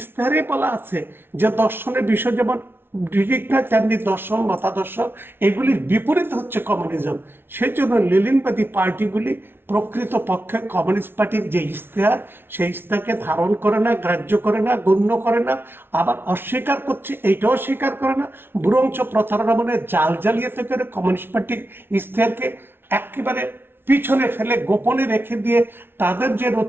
বলা আছে যে দর্শনের বিষয় যেমন ঠিক না, তেমনি দর্শন মতাদর্শ এগুলির বিপরীত হচ্ছে কমিউনিজম। সেই জন্য লেনিনবাদী পার্টিগুলি প্রকৃত পক্ষে কমিউনিস্ট পার্টির যে ইশতেহার, সেই ইশতেহারকে ধারণ করে না, গ্রাহ্য করে না, গণ্য করে না, আবার অস্বীকার করছে, এইটাও স্বীকার করে না, বরঞ্চ প্রতারণা মনে জাল জালিয়াতি করে কমিউনিস্ট পার্টির ইশতেহারকে একেবারে পিছনে ফেলে গোপনে রেখে দিয়ে তাদের যে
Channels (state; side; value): late; left; 0.11 ms